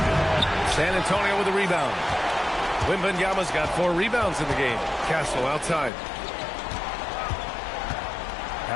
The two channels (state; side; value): drops out; right; at 5.9 s